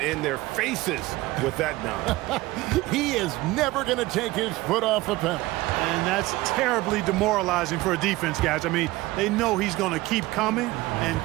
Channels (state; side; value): quieter; left; 19.1 dB